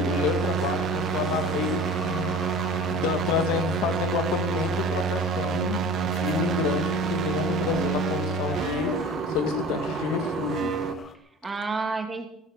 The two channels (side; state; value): both; normal; correlation 0.40